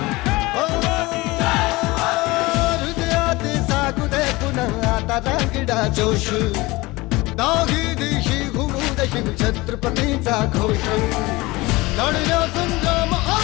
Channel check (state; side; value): quieter; right; 21.6 dB